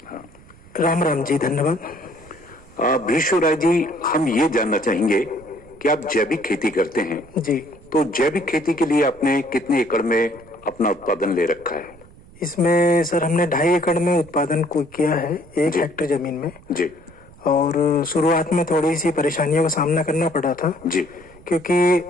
हाँ, राम राम जी, धन्यवाद। भीष्म राय जी, हम ये जानना चाहेंगे कि आप जैविक खेती करते हैं जी। तो जैविक खेती के लिए आपने कितने एकड़ में अपना उत्पादन ले रखा है? इसमें सर हमने 2.5 एकड़ में उत्पादन को किया है, 1 हेक्टेयर जमीन में जी। और शुरुआत में थोड़ी सी परेशानियों का सामना करना पड़ा था जी, क्योंकि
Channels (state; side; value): noise; right; rumble, 23 dB below the sound